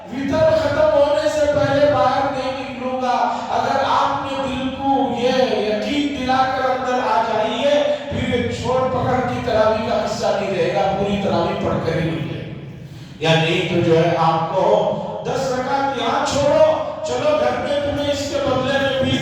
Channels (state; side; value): identical; both; correlation 1.00